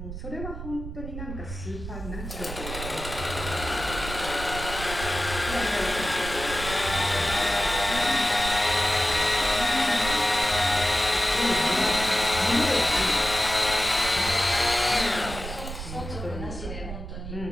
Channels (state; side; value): noise; right; rumble, 9 dB below the sound